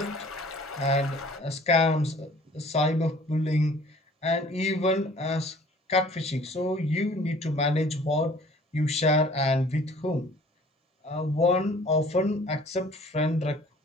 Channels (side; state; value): both; normal; correlation 0.52